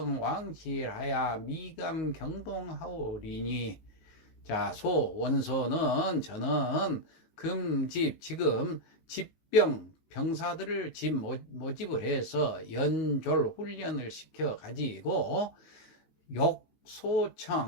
왕실하야 미감 경동하오리니. 자, 원소는 저는 지금 병사들을 모집을 해서 연졸 훈련을 시켜 가지고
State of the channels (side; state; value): right; late; 19 ms